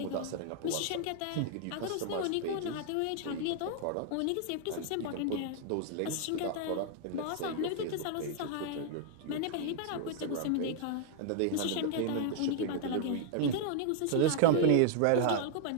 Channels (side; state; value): both; different; correlation -0.01